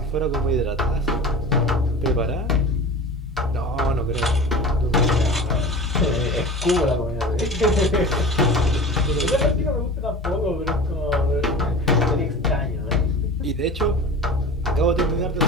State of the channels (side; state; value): both; normal; correlation 0.35